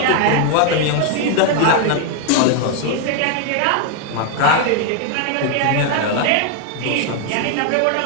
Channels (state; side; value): different; both; correlation 0.00